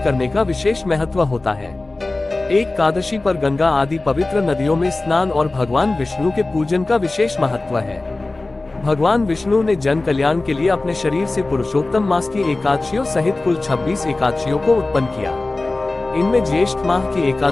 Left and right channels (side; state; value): right; quieter; 3.1 dB